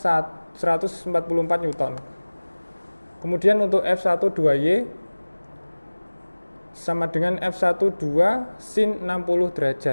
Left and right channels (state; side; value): inverted; both; correlation -1.00